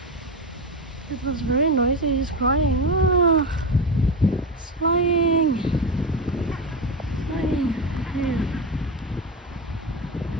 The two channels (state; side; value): normal; both; correlation 0.16